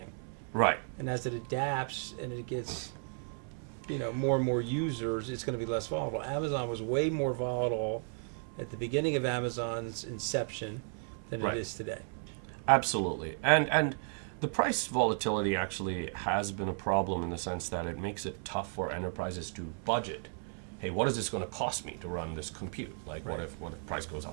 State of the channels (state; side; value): silent; left; 55 dB below the other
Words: Right. And as it adapts and it gets, you know, more and more users, it's going to be less volatile. Amazon was way more volatile at the beginning of Amazon's inception than it is today. Absolutely. And the price volatility actually has been a problem in the sense that it makes it tough for enterprises to budget. Hey, what is this going to cost me to run this compute? Like, what if price goes